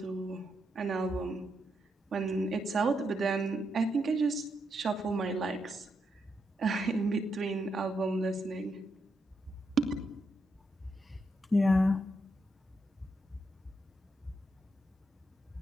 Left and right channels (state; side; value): normal; both; correlation 0.82